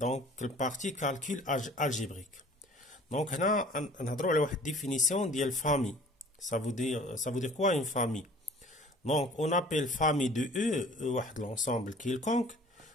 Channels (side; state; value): both; normal; correlation 0.49